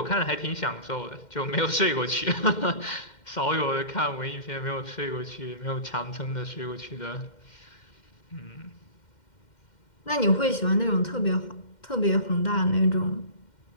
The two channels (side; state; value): right; late; 2.1 ms